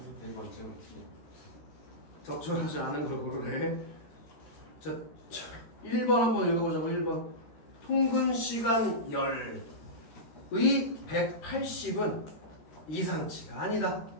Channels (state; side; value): late; right; 13 ms